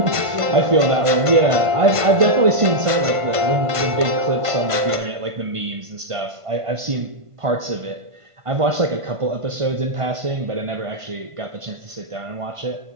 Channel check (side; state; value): left; late; 1.5 ms